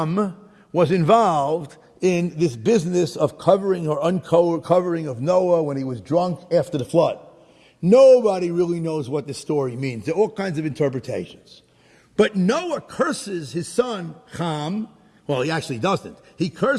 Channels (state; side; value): identical; both; correlation 1.00